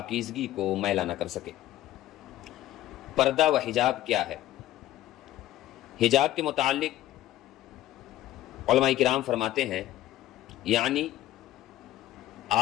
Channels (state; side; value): quieter; right; 14.4 dB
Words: کو میلا نہ کر سکے۔ پردہ و حجاب کیا ہے؟ حجاب کے متعلق علماء کرام فرماتے ہیں، یعنی